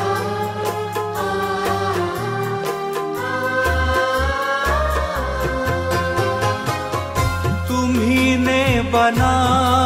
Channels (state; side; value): identical; both; correlation 1.00